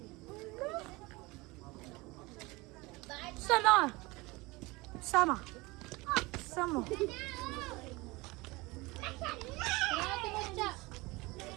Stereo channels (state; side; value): quieter; left; 23.2 dB